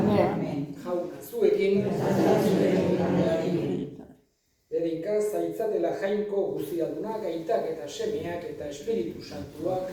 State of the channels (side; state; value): both; identical; correlation 1.00